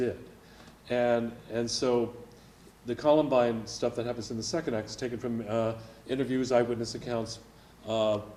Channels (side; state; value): both; identical; correlation 1.00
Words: And so the Columbine stuff that happens in the second act is taken from interviews, eyewitness accounts.